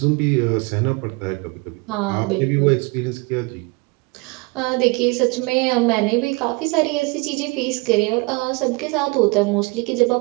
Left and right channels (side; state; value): left; quieter; 27.3 dB